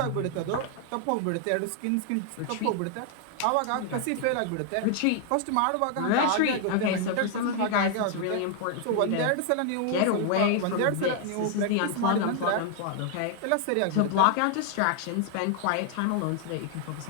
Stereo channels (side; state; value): both; different; correlation 0.00